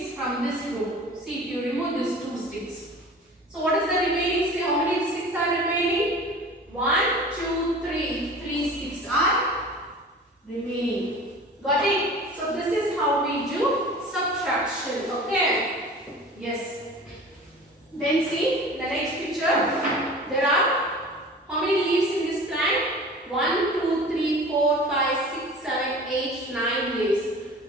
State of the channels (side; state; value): both; normal; correlation 0.40